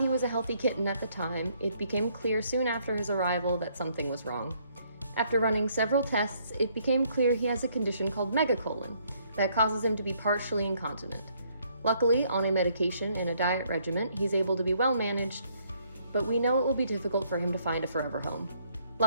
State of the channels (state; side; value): inverted; both; correlation -0.68